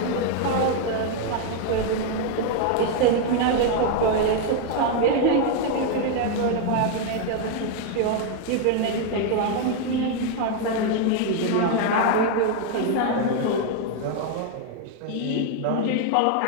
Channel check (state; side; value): different; both; correlation 0.00